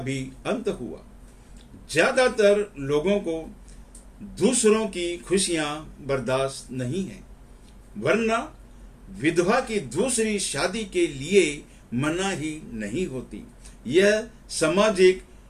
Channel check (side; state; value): both; identical; correlation 1.00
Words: अंत हुआ। ज्यादातर लोगों को दूसरों की खुशियां बर्दाश्त नहीं है, वरना विधवा की दूसरी शादी के लिए मनाही नहीं होती। यह सामाजिक